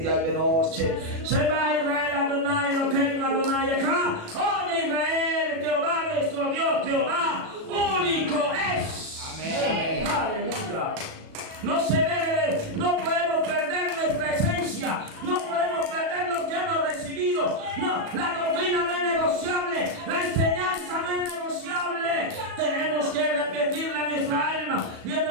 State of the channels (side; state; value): left; late; 37 ms